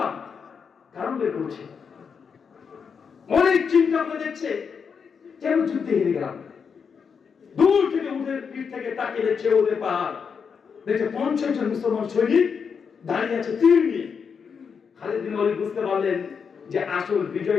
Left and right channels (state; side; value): quieter; right; 6.2 dB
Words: কারণ বের করছে, অনেক চিন্তা করে দেখছে কেন যুদ্ধে হেরে গেলাম। দূর থেকে ওদের পিঠ থেকে তাকিয়ে দেখছে ওদের পাহাড়, দেখছে 50 জন মুসলমান সৈনিক দাঁড়িয়ে আছে তীর নিয়ে। খালিদ বিন ওয়ালিদ বুঝতে পারলেন যে আসল